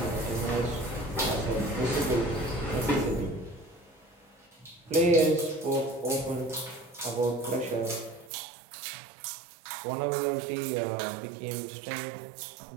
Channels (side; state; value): left; drops out; at 8.3 s